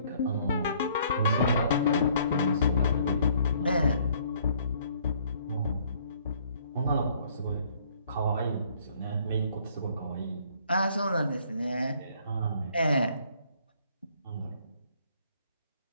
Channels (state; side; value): inverted; both; correlation -0.62